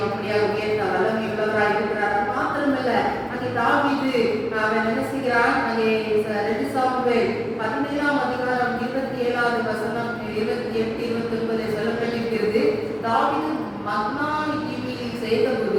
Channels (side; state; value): both; identical; correlation 1.00